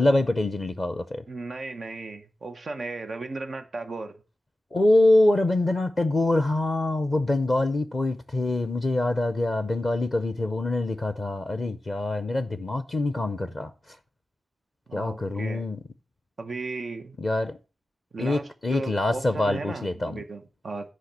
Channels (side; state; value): both; normal; correlation 0.94